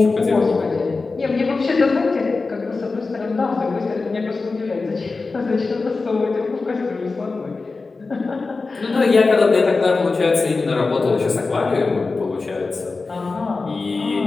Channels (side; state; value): right; quieter; 3.9 dB